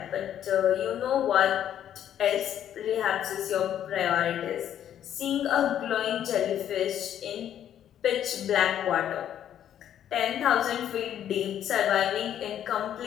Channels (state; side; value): quieter; right; 10.4 dB